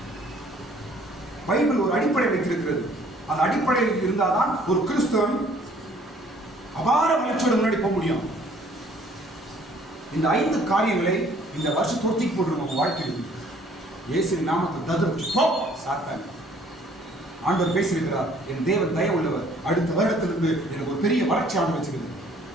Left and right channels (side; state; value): both; normal; correlation 0.58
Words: பைபிள் ஒரு அடிப்படை வைத்திருக்கிறது. அந்த அடிப்படையில் இருந்தால்தான் ஒரு கிறிஸ்தவன் அபார வளர்ச்சியோட முன்னாடி போக முடியும். இந்த 5 காரியங்களை இந்த வருஷம் தொடுத்திக்கு போட்டு நம்ம வாழ்க்கையில் இயேசுவின் நாமத்தில் ததுர்த்து போ சாத்தான். ஆண்டவர் பேசியிருக்கிறார், என் தேவன் தயவு உள்ளவர், அடுத்த வருடத்திலிருந்து எனக்கு ஒரு பெரிய வளர்ச்சி ஆண்டு வச்சுக்கிறது.